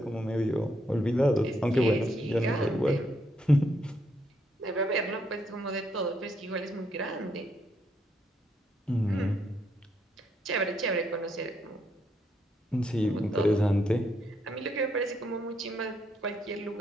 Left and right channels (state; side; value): normal; both; correlation 0.75